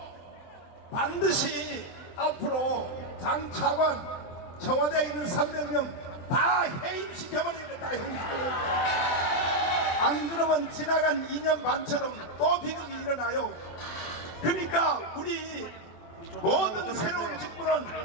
반드시 앞으로 장 차관 청와대에 있는 300명 다 해임시켜버리겠다. 다 해임시켜버리겠다. 안 그러면 지나간 2년 반처럼 또 비극이 일어나요. 그러니까 우리 모든 새로운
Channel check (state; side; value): late; right; 23 ms